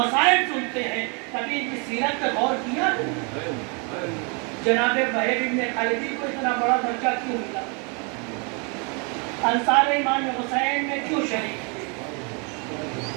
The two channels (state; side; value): quieter; left; 34.0 dB